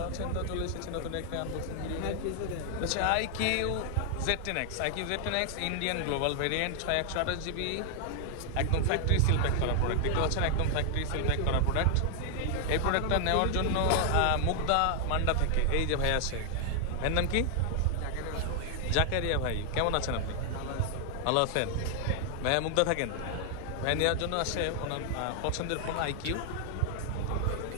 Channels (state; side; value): different; both; correlation 0.00